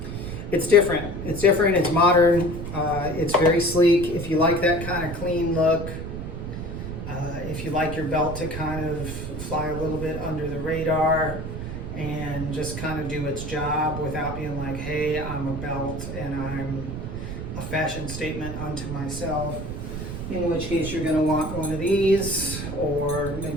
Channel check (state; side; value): noise; right; rumble, 7 dB below the sound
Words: It's different. It's different. It's modern. It's very sleek. If you like that kind of clean look, if you like your belt to kind of fly a little bit under the radar and just kind of do its job without being like, hey, I'm a belt and I'm a fashion statement unto myself, in which case you're going to want one of these, or